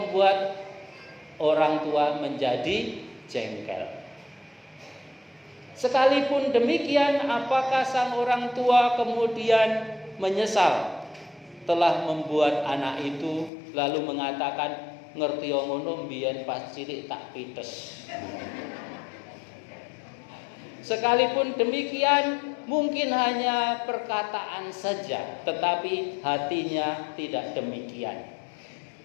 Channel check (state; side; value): drops out; right; at 13.5 s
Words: orang tua menjadi jengkel. Sekalipun demikian, apakah sang orang tua kemudian menyesal telah membuat anak itu lalu mengatakan, ngerti ngono mbiyen pas cilik tak pites. Sekalipun demikian, mungkin hanya perkataan saja, tetapi hatinya tidak demikian.